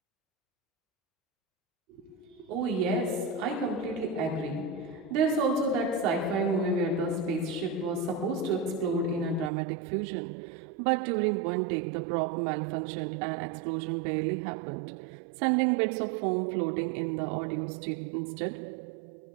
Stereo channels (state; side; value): drops out; left; at 9.5 s